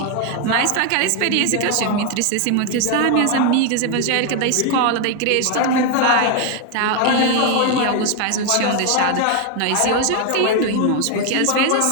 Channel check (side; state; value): both; different; correlation 0.01